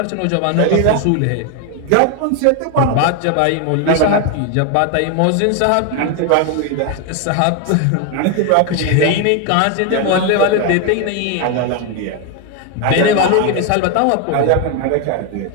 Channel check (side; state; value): both; different; correlation 0.01